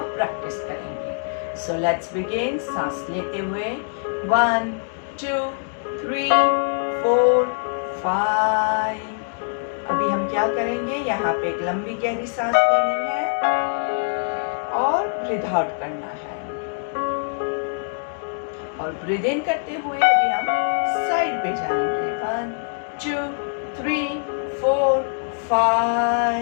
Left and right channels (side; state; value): right; silent; digital silence